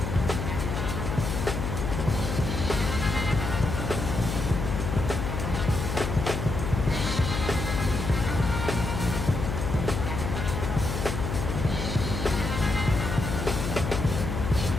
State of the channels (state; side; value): noise; left; hum, 3 dB below the sound